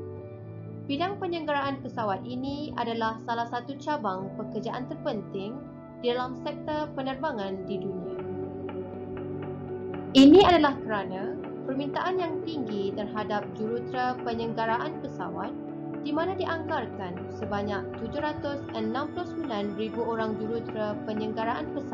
Bidang penyelenggaraan pesawat ini adalah salah satu cabang pekerjaan terpenting di dalam sektor penerbangan di dunia. Ini adalah kerana permintaan yang tinggi terhadap jurutera penyelenggaraan pesawat di mana dianggarkan sebanyak 769,000 orang jurutera penyelenggaraan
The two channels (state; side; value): identical; both; correlation 1.00